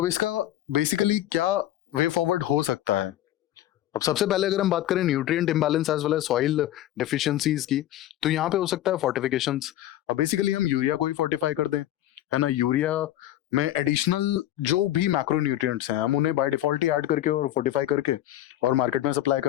इसका बेसिकली क्या वे फॉरवर्ड हो सकता है। अब सबसे पहले अगर हम बात करें nutrient imbalance as well as soil deficiencies की, तो यहाँ पे हो सकता है फोर्टिफिकेशंस। अब बेसिकली हम यूरिया को ही फोर्टिफाई कर दें, है ना। यूरिया में एडिशनल जो भी मैक्रो न्यूट्रिएंट्स हैं, हम उन्हें बाय डिफॉल्ट ही ऐड करके और फोर्टिफाई करके और मार्केट में सप्लाई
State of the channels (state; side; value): quieter; right; 13.4 dB